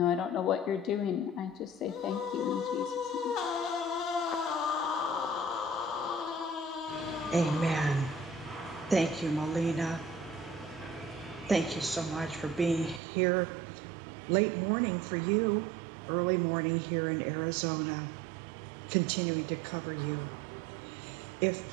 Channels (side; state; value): left; drops out; at 13.0 s